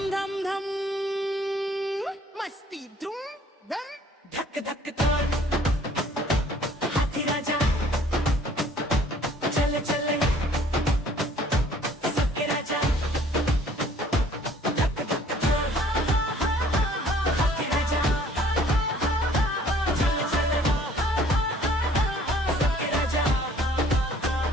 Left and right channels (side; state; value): both; normal; correlation 0.56